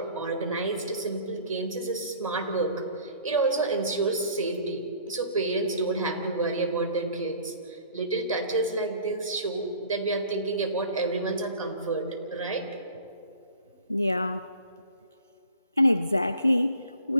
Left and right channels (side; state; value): both; inverted; correlation -0.49